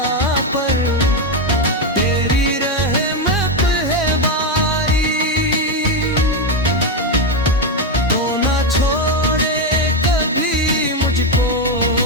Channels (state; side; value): normal; both; correlation 0.08